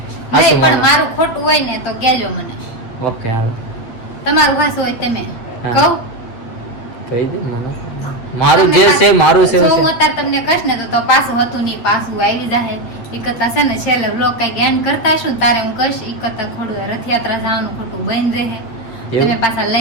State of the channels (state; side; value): late; right; 8.7 ms